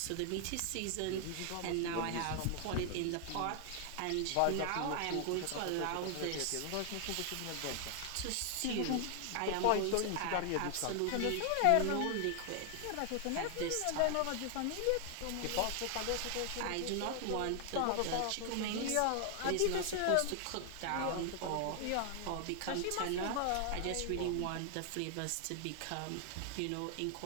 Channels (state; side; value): different; both; correlation 0.00